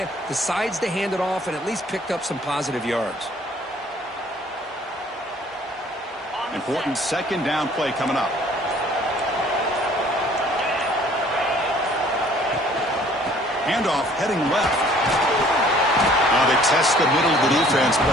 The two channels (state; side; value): normal; both; correlation 0.56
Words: decides to hand it off and at least picked up some positive yards. Important 2nd down play coming up. Handoff heading left. Now they test the middle of the defense,